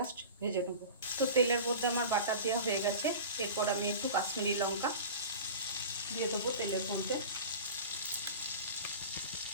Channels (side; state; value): both; inverted; correlation -0.35